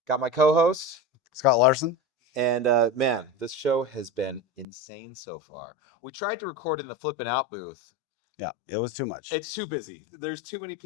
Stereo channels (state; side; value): drops out; right; at 4.7 s